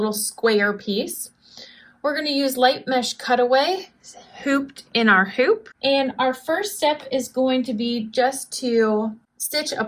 square piece. We're going to use light mesh cutaway hooped in our hoop. And our first step is going to be just to stitch a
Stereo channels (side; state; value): both; identical; correlation 1.00